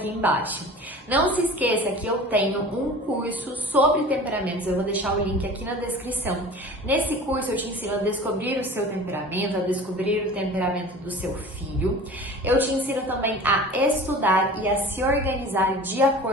embaixo. Não se esqueça que eu tenho um curso sobre temperamentos, eu vou deixar o link aqui na descrição. Nesse curso eu te ensino a descobrir o seu temperamento, a descobrir o temperamento do seu filho. Eu te ensino também a estudar e a se organizar de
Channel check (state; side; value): normal; both; correlation 0.39